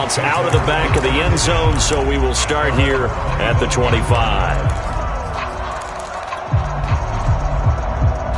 out of the back of the end zone, so we will start here at the 25.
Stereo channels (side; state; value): both; identical; correlation 1.00